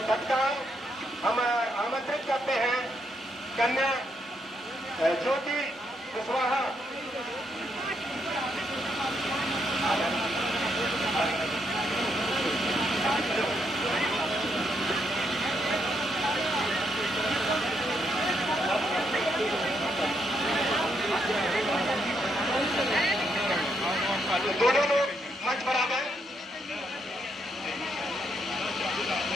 तत्काल हम आमंत्रित करते हैं कन्या ज्योति कुशवाहा। दोनों लोग मंच पर आ गए।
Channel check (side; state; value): both; normal; correlation 0.77